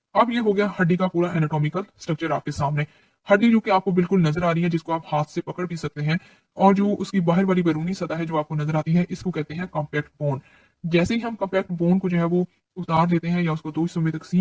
अब ये हो गया हड्डी का पूरा एनाटॉमिकल स्ट्रक्चर आपके सामने। हड्डी जो कि आपको बिल्कुल नजर आ रही है जिसको आप हाथ से पकड़ भी सकते हैं और जो उसकी बाहर वाली बैरूनी सतह है जो आपको नजर आती है इसको कहते हैं कॉम्पैक्ट बोन। जैसे ही हम कॉम्पैक्ट बोन को जो है वो उतार देते हैं या उसको दो हिस्सों में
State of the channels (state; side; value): identical; both; correlation 1.00